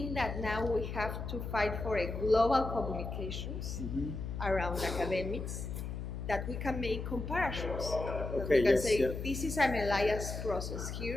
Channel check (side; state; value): left; noise; hum, 5 dB below the sound